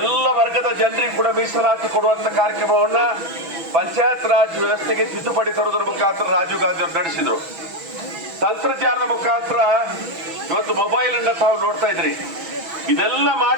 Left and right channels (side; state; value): left; late; 6.1 ms